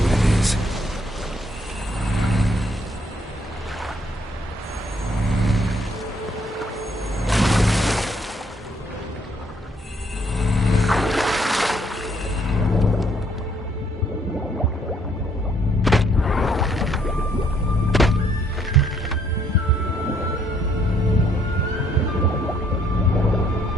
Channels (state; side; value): normal; both; correlation 0.68